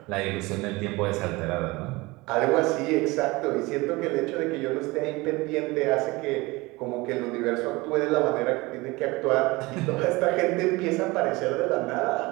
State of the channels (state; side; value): quieter; left; 22.7 dB